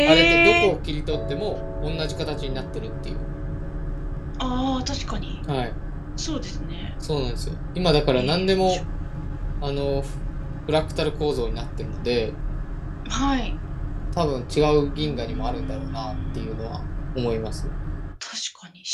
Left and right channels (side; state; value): both; identical; correlation 1.00